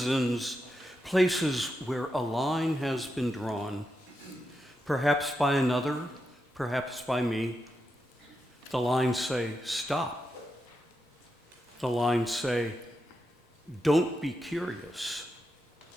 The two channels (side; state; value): both; normal; correlation 0.86